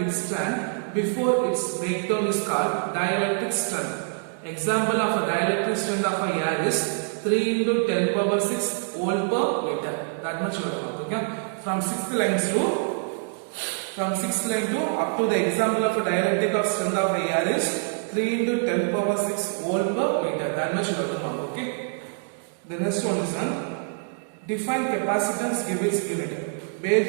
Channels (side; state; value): left; silent; 57 dB below the other